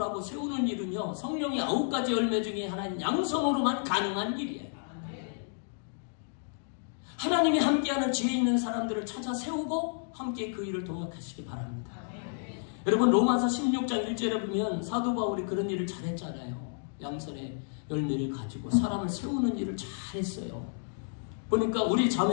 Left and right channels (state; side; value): silent; right; digital silence